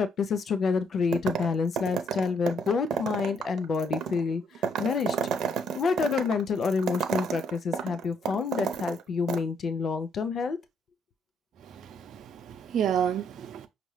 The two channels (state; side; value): normal; both; correlation 0.70